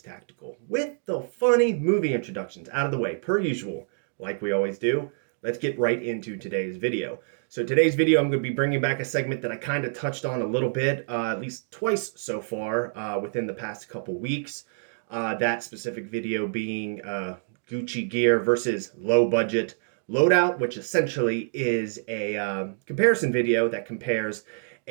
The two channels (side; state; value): left; silent; digital silence